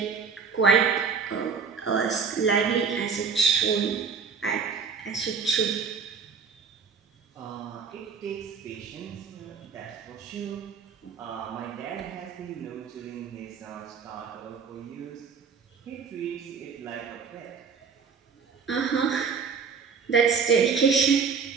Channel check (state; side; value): quieter; left; 5.7 dB